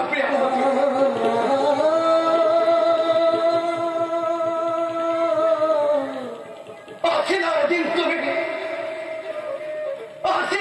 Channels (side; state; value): both; identical; correlation 1.00